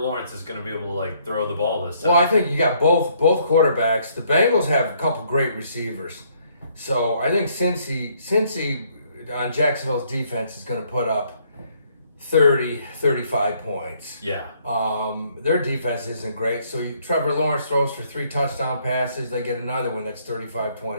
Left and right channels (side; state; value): both; inverted; correlation -0.67